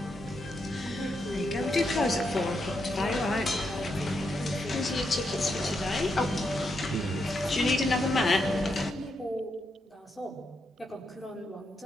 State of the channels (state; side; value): normal; both; correlation 0.82